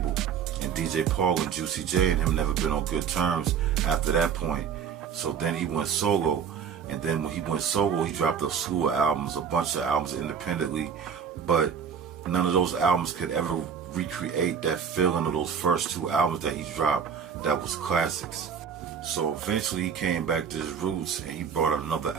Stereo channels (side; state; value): left; quieter; 7.2 dB